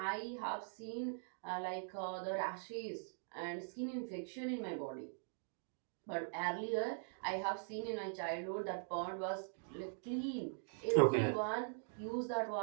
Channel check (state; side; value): silent; left; digital silence